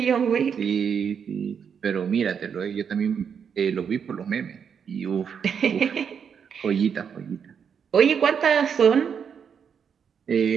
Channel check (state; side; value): quieter; left; 7.2 dB